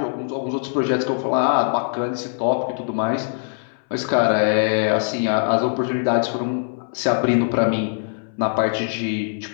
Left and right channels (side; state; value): right; silent; 62 dB below the other